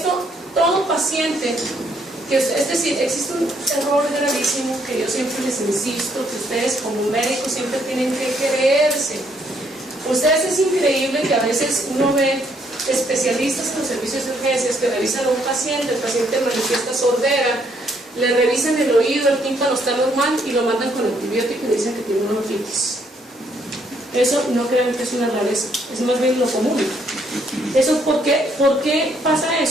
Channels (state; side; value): normal; both; correlation 0.70